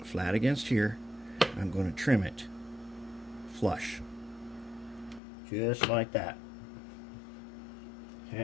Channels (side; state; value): right; drops out; at 5.2 s